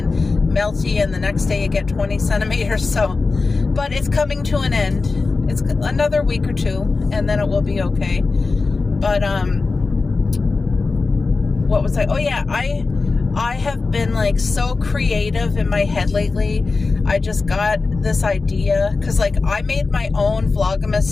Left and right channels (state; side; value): quieter; right; 4.0 dB